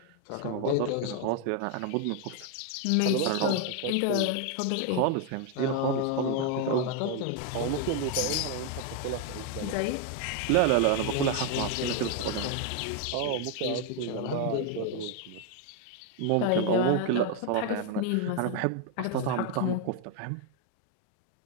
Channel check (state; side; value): different; both; correlation 0.01